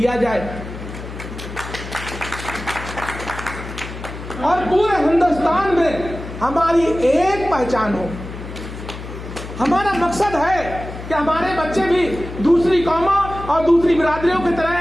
जाए और पूरे हिंदुस्तान में हमारी एक पहचान हो। हमारा मकसद है कि हमारे बच्चे भी दूसरी कौमों और दूसरी बिरादरियों की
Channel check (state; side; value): noise; left; hum, 11 dB below the sound